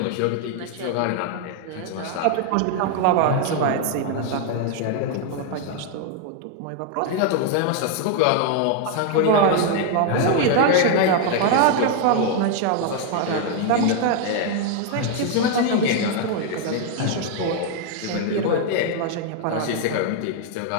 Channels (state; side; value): different; both; correlation 0.00